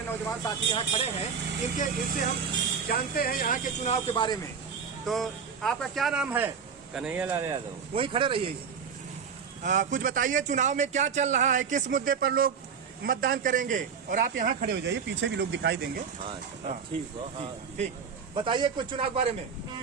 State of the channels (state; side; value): quieter; left; 6.4 dB